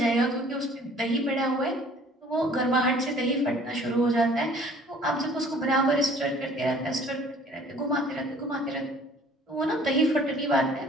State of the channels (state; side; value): normal; both; correlation 0.53